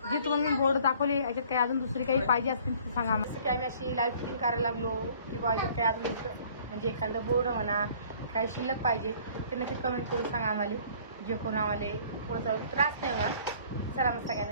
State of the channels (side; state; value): both; inverted; correlation -0.54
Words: जे तुम्हाला मी बोर्ड दाखवले याच्यात काही अजून दुसरी काही पाहिजे असतील तर सांगा. जसं की आम्ही अशी लाईव्ह फिटिंग करायला लागलो किंवा याच्यात काही अजून म्हणजे एखादं बोर्ड म्हणा काही शिल्लक पाहिजे ते नक्की कमेंट करून सांगा आम्हाला. जे कोण आम्हाला पुढे चालू त्रास नाही होणार. चला मग